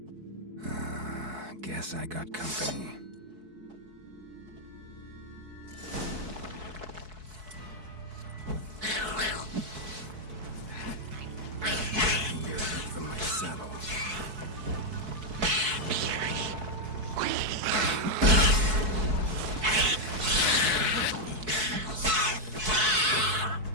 Guess I got company.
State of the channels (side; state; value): left; late; 4.6 ms